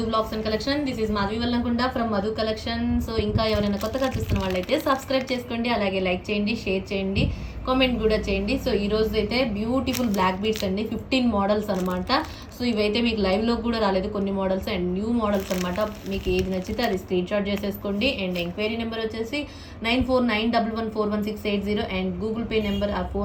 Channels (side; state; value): both; identical; correlation 1.00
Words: blogs and collection. This is Madhavi Vallamkunda from Madhu collection. So ఇంకా ఎవరైనా కొత్తగా చూస్తున్న వాళ్ళైతే సబ్స్క్రైబ్ చేసుకోండి, అలాగే లైక్ చేయండి, షేర్ చేయండి, కామెంట్ కూడా చేయండి. సో ఈ రోజు అయితే బ్యూటిఫుల్ బ్లాక్ బీడ్స్ అండి, 15 మోడల్స్ అనమాట. సో ఇవైతే మీకు లైవ్లో కూడా రాలేదు, కొన్ని మోడల్స్ అండ్ న్యూ మోడల్స్ అనమాట. మీకు ఏది నచ్చితే అది స్క్రీన్ షాట్ చేసేసుకోండి. అండ్ ఎంక్వైరీ నెంబర్ వచ్చేసి 9491114160 అండ్ గూగుల్ పే నెంబర్ ఆ